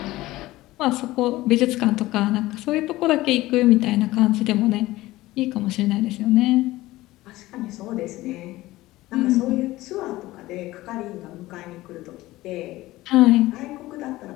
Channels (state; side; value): quieter; right; 17.8 dB